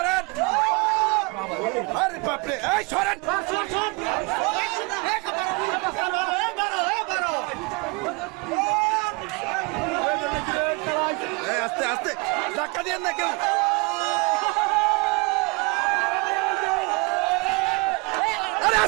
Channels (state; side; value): quieter; left; 28.7 dB